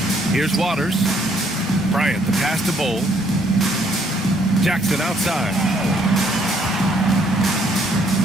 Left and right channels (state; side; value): normal; both; correlation 0.67